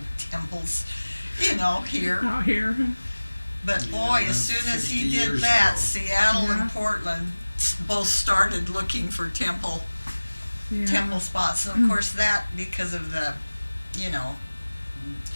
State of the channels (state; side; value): inverted; both; correlation -1.00